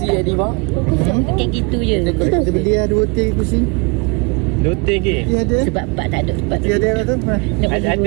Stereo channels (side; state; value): left; quieter; 30.2 dB